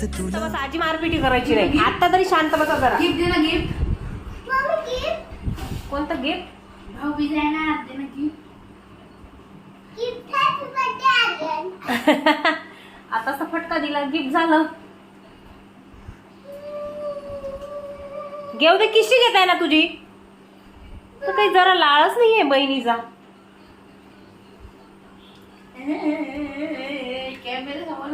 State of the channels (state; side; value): identical; both; correlation 1.00